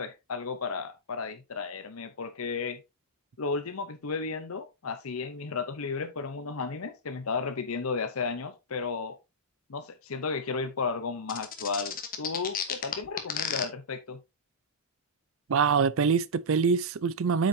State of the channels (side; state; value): both; normal; correlation -0.12